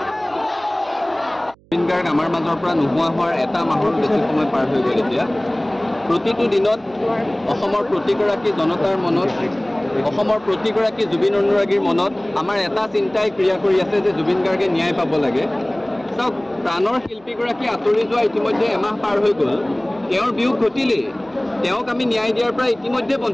জুবিন গাৰ্গ আমাৰ মাজৰ পৰা নোহোৱা হোৱাৰ এটা মাহৰ বেছি সময় পাৰ হৈ গ'ল এতিয়া প্ৰতিটো দিনত অসমৰ প্ৰতিগৰাকী জনতাৰ মনত অসমৰ প্ৰতিগৰাকী জুবিন অনুৰাগীৰ মনত আমাৰ এটা চিন্তাই ক্ৰিয়া কৰি আছে যে জুবিন গাৰ্গে ন্যায় পাব লাগে চাওক প্ৰাণৰ শিল্পীগৰাকী আঁতৰি যোৱা ইতিমধ্যে এমাহ পাৰ হৈ গ'ল তেওঁৰ বিয়োগ ঘটিলেই তেওঁক আমি ন্যায় দিয়াৰ পৰা ইতিমধ্যে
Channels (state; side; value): noise; right; hum, 29 dB below the sound